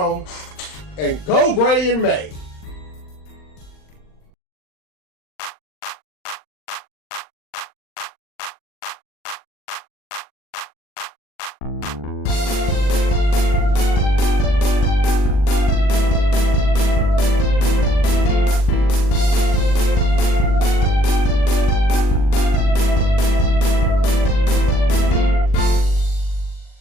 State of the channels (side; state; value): right; late; 40 ms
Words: and go gray in May.